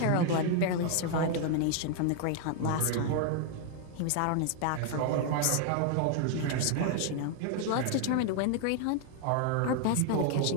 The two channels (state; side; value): different; both; correlation 0.00